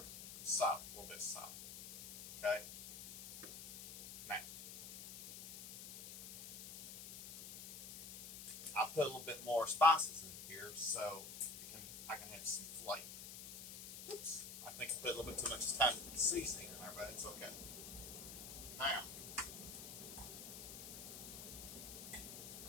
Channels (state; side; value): noise; left; hiss, 11 dB below the sound